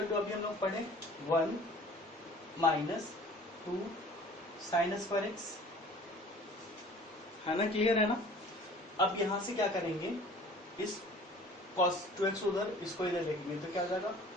टू अभी हम लोग पढ़े 1 माइनस 2 साइन स्क्वायर एक्स, है ना, क्लियर है ना। अब यहां से क्या करेंगे, इस cos 2x उधर, इसको इधर लिखेंगे तो क्या हो जाएगा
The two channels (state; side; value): normal; both; correlation 0.48